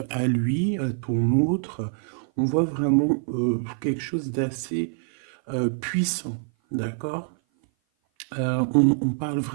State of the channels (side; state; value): left; silent; 57 dB below the other